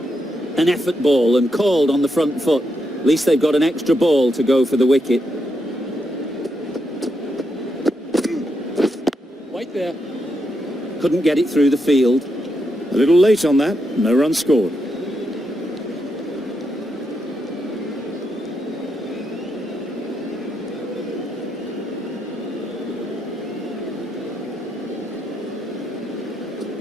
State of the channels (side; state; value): both; normal; correlation 0.82